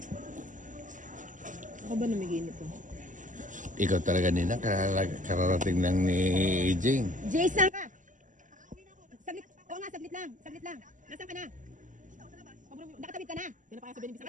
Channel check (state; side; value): late; left; 0.37 ms